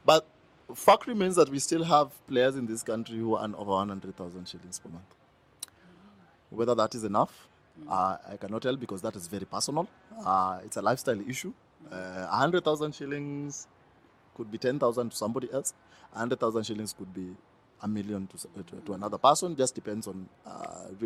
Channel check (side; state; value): both; identical; correlation 1.00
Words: But fact remains that we still have players in this country who earn over 100,000 shillings per month. Whether that is enough, I cannot tell, because that is very personal. It's a lifestyle issue. 100,000 shillings could be 10,000 to somebody else. 100,000 shillings could be a million to another person. Just depends on